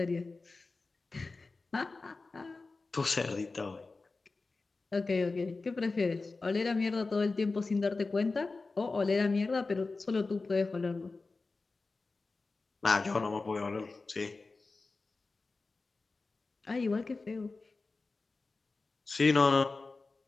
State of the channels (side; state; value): right; quieter; 3.7 dB